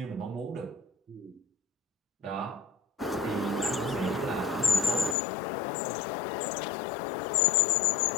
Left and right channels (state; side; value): drops out; right; at 5.2 s